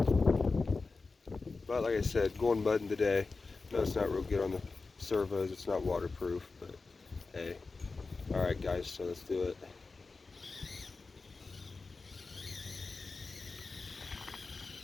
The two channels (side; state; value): right; quieter; 4.0 dB